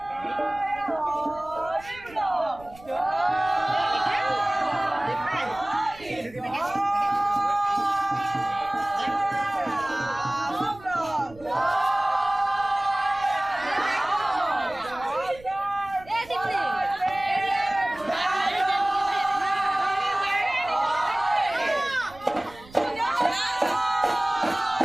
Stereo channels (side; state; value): right; noise; rumble, 22 dB below the sound